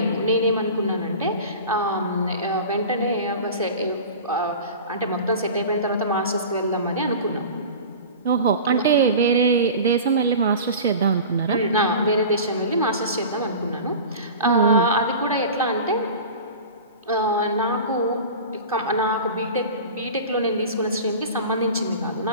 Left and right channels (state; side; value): inverted; both; correlation -0.35